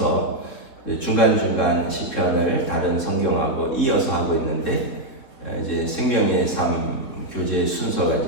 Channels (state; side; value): late; right; 3.8 ms